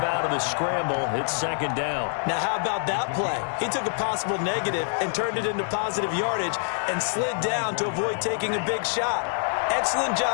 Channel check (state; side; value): silent; right; digital silence